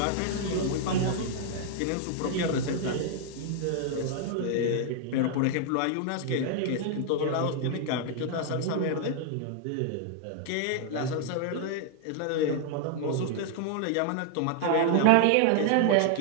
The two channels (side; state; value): both; different; correlation 0.00